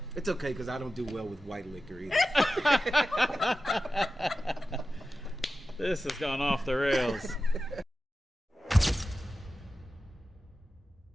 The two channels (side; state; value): both; normal; correlation 0.93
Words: It's okay, because I don't do well with white liquor either. this has gone off the rails.